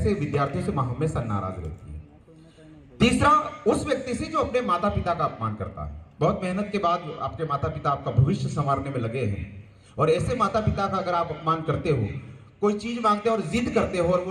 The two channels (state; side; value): identical; both; correlation 1.00